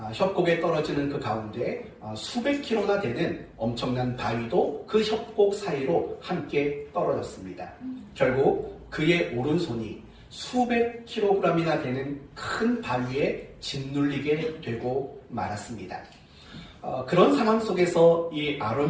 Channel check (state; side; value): identical; both; correlation 1.00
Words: 협곡에 떨어지는 그 가운데 수백 킬로나 되는 엄청난 바위도 그 협곡 사이로 함께 떨어졌습니다. 결국 그의 오른손이 수백 킬로그램이나 되는 큰 바위에 짓눌리게 되고 말았습니다. 그런 상황 속에서 이